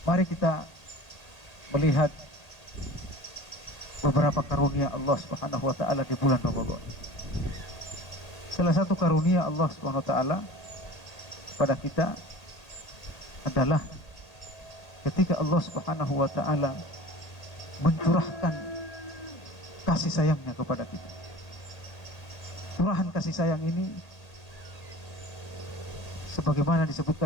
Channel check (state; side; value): late; right; 1.8 ms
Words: mari kita melihat beberapa karunia Allah Subhanahu wa taala di bulan Ramadan. Salah satu karunia Allah Subhanahu wa taala pada kita adalah ketika Allah Subhanahu wa taala mencurahkan kasih sayangnya kepada kita. Curahan kasih sayang ini sebagaimana